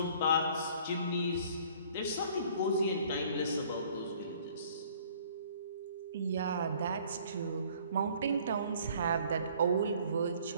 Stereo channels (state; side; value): inverted; both; correlation -0.55